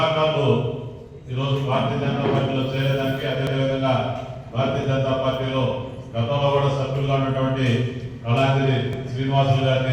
ఈరోజు భారతీయ జనతా పార్టీలో చేరేదానికి, అదేవిధంగా భారతీయ జనతా పార్టీలో గతంలో కూడా సభ్యులుగా ఉన్నటువంటి కళాంజలి శ్రీనివాసులు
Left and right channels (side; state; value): both; identical; correlation 1.00